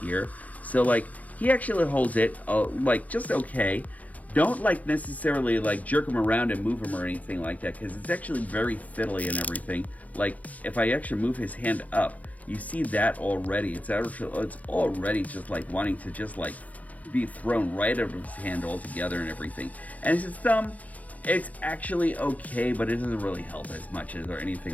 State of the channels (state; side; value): late; right; 0.074 ms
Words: So like he actually holds it like just okay. Don't like necessarily like jerk him around and move him or anything like that, because it's actually very fiddly and everything. Like if I actually move his hand up, you see that already. It's already just like wanting to just like be thrown right out of his hand altogether and everything. And his thumb, it's actually okay, but it doesn't really help as much as or